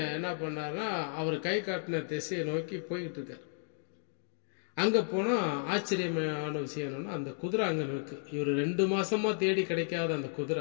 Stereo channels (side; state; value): right; silent; digital silence